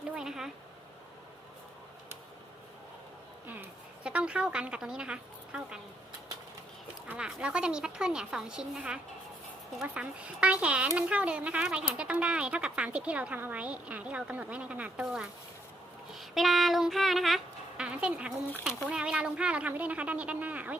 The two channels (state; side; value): normal; both; correlation 0.73